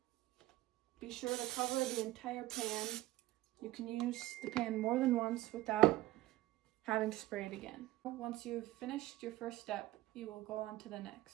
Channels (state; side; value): quieter; left; 16.9 dB